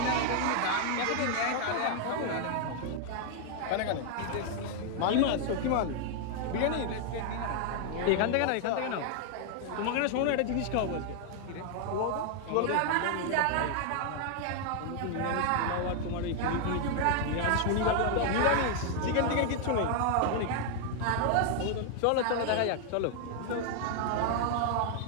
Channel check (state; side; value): different; both; correlation 0.00